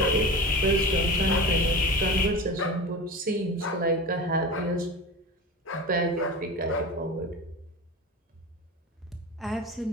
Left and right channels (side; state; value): both; normal; correlation 0.29